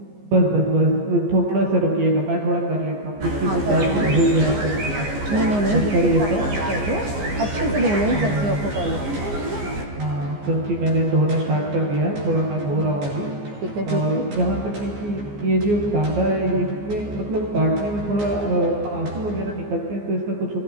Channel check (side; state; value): left; late; 15 ms